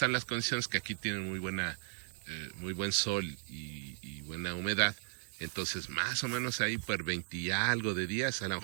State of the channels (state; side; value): silent; left; 54 dB below the other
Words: las condiciones, que aquí tienen muy buen sol y buena humedad, Entonces, más o menos ahí por 20 y algo de días, a lo